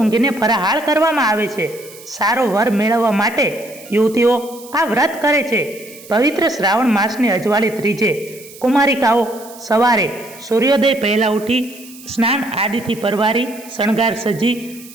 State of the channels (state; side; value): noise; right; hiss, 19 dB below the sound